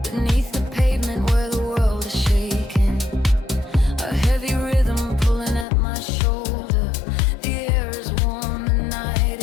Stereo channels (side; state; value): right; drops out; at 5.7 s